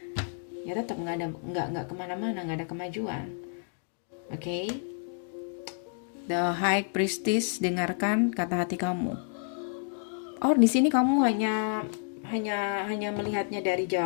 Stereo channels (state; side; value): silent; right; digital silence